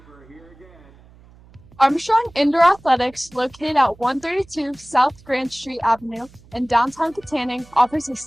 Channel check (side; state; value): right; noise; hum, 25 dB below the sound